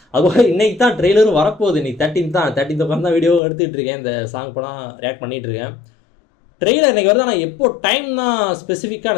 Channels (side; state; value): right; drops out; at 3.4 s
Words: அதுபோல் இன்றைக்கி தான் ட்ரெய்லரும் வரப்போகுது. இன்றைக்கி 13th உட்காந்து தான் வீடியோ எடுத்துகிட்டு இருக்கேன். இந்த சாங் இப்போ தான் ரியாக்ட் பண்ணிகிட்ருக்கேன். ட்ரெய்லர் இன்றைக்கி வருது. ஆனால் எப்போ டைம்னா ஸ்பெசிஃபிக்காக